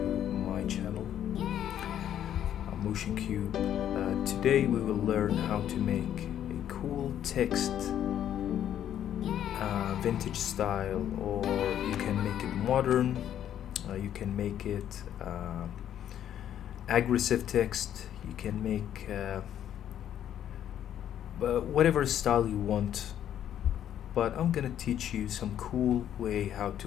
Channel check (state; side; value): quieter; right; 10.5 dB